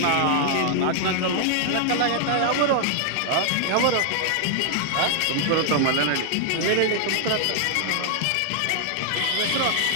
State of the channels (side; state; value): both; different; correlation 0.00